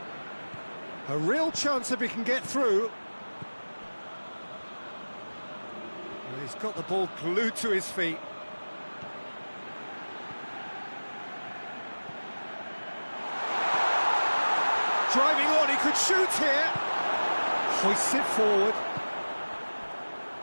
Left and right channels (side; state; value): both; inverted; correlation -1.00